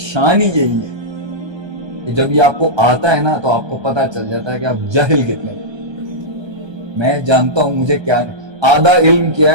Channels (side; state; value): left; late; 1.2 ms